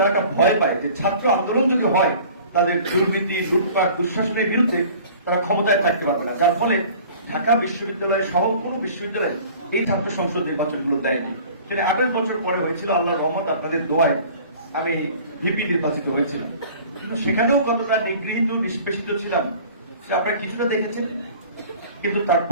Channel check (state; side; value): inverted; both; correlation -0.46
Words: একটা ভয় পায় যে ছাত্র আন্দোলন যদি হয়, তাদের দুর্নীতি লুটপাট দুঃশাসনের বিরুদ্ধে তারা ক্ষমতায় থাকতে পারবে না। যার ফলে ঢাকা বিশ্ববিদ্যালয় সহ কোনো বিশ্ববিদ্যালয় এই ছাত্র সংসদ নির্বাচনগুলো দেয়নি। সেটা 28 বছর পরে হয়েছিল। আল্লাহর রহমত, আপনাদের দোয়ায় আমি ভিপি নির্বাচিত হয়েছিলাম। কিন্তু সেখানেও কতটা নিগৃহীত নিষ্পেষিত ছিলাম সে আপনারা কিছুটা দেখেছেন। কিন্তু